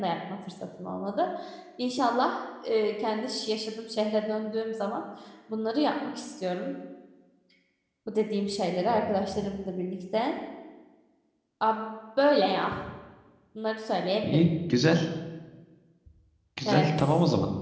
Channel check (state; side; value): identical; both; correlation 1.00